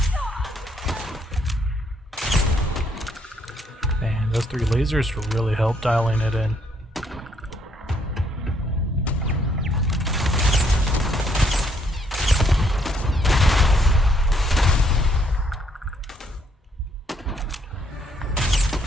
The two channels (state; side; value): normal; both; correlation 0.70